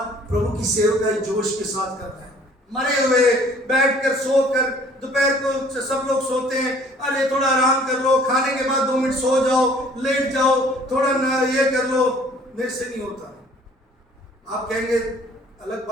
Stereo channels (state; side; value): normal; both; correlation 0.55